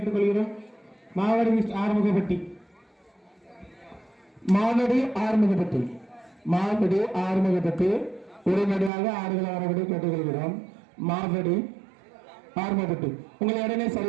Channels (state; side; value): drops out; left; at 8.9 s